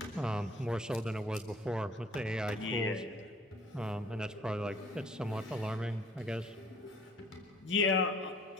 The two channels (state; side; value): normal; both; correlation 0.55